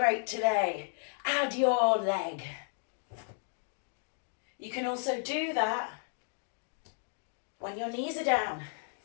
today, add your leg. You can also do that when your knees are down.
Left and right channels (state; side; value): silent; right; digital silence